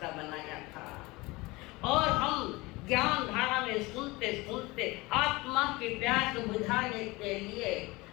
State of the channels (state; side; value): quieter; right; 22.5 dB